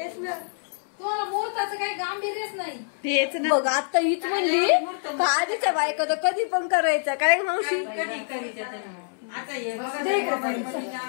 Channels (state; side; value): silent; right; 61 dB below the other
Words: ना, तुम्हाला मुहूर्ताचं काही गांभीर्यच नाही. तेच ना. बघ आता हीच म्हणली का आधीच्या बायका तर कधी पण करायचं काय मावशी. आता